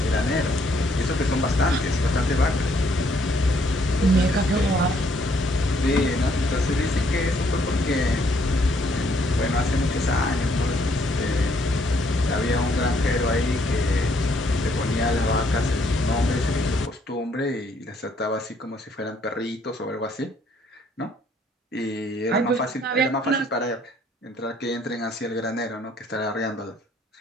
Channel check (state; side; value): normal; both; correlation 0.67